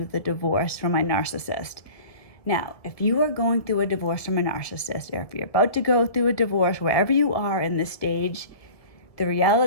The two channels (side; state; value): right; late; 1.6 ms